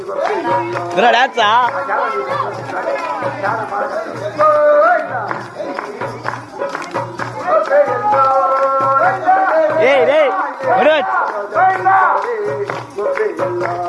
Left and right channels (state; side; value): identical; both; correlation 1.00